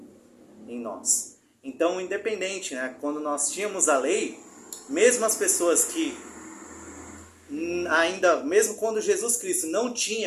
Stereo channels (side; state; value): both; identical; correlation 1.00